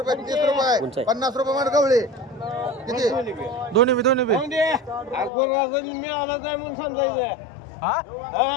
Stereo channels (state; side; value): drops out; right; at 5.3 s